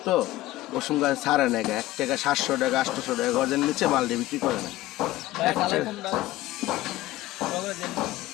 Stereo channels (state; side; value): quieter; right; 16.6 dB